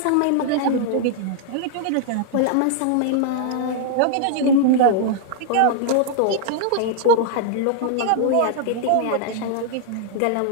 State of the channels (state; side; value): different; both; correlation -0.01